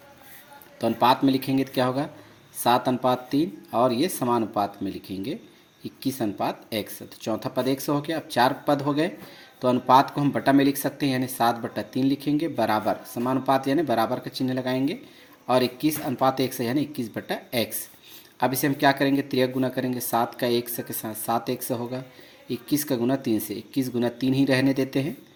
तो अनुपात में लिखेंगे तो क्या होगा 7:3, और ये समानुपात में लिखेंगे 21:x। तो चौथा पद x हो गया। अब 4 पद हो गए, तो अनुपात को हम बटा में लिख सकते हैं, यानी 7/3 लिखेंगे, बराबर समानुपात यानी बराबर का चिन्ह लगाएंगे, और 21:x है, यानी 21/x। अब इसे हम क्या करेंगे, त्रियक गुना करेंगे। 7 का x के साथ 7x होगा, 21 का गुना 3 से 21 गुना 3 ही रहने देते हैं,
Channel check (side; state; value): both; identical; correlation 1.00